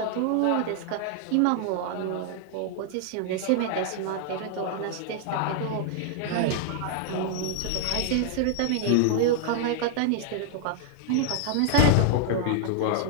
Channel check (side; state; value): both; different; correlation 0.00